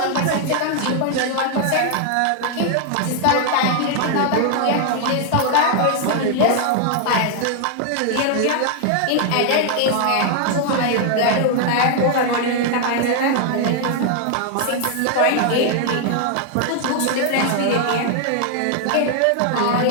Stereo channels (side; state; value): both; different; correlation 0.00